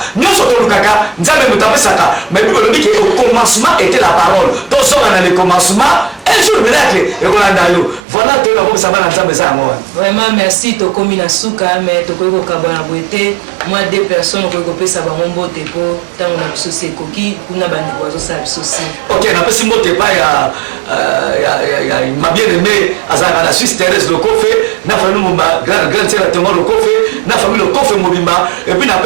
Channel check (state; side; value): drops out; left; at 8.0 s